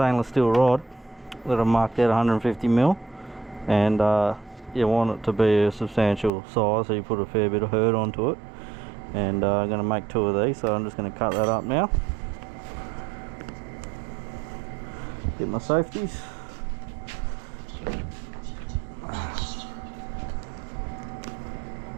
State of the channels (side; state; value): left; drops out; at 6.3 s